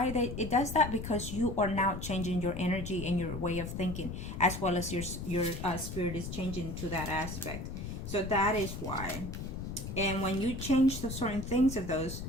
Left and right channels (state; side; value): noise; left; rumble, 7 dB below the sound